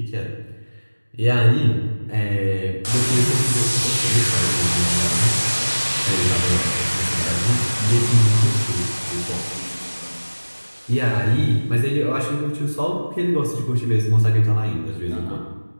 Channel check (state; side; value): inverted; both; correlation -1.00